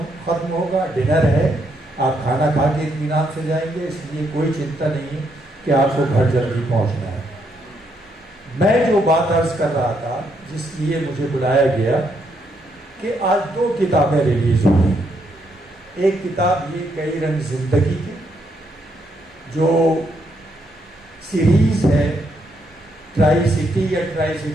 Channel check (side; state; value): both; normal; correlation 0.76